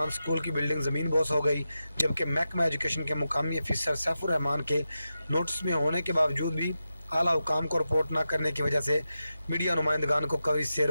स्कूल की बिल्डिंग ज़मीन बोस हो गई, जबकि महकमा एजुकेशन के मुकामी अफसर सैफुर रहमान के नोटिस में होने के बावजूद भी आला हुकाम को रिपोर्ट न करने की वजह से मीडिया नुमाइंदगान को कवरेज से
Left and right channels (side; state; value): both; inverted; correlation -0.90